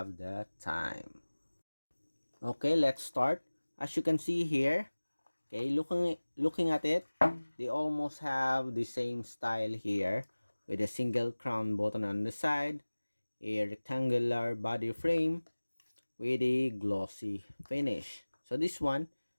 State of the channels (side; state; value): both; inverted; correlation -1.00